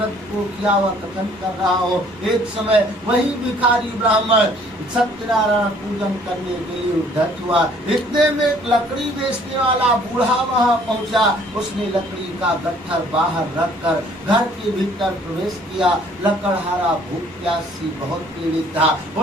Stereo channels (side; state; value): both; normal; correlation 0.58